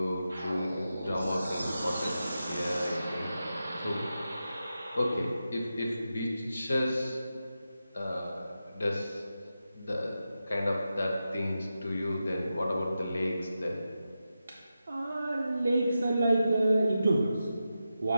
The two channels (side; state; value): both; inverted; correlation -0.90